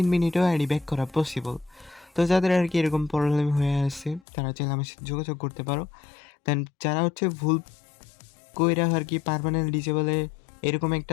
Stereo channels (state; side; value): drops out; right; at 4.2 s